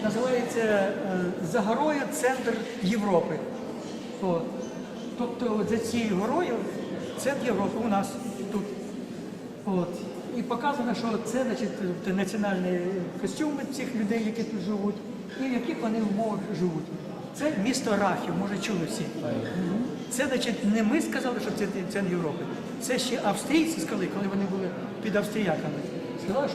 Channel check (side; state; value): both; identical; correlation 1.00